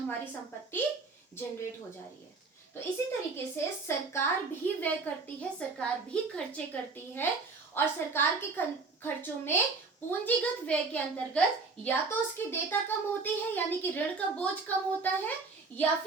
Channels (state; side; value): quieter; left; 4.2 dB